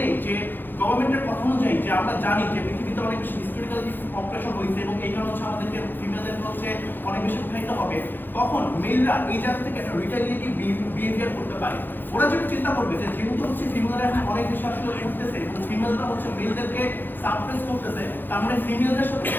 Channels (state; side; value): late; right; 0.093 ms